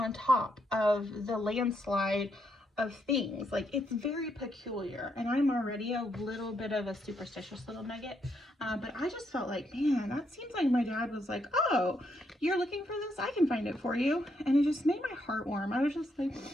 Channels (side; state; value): both; normal; correlation 0.77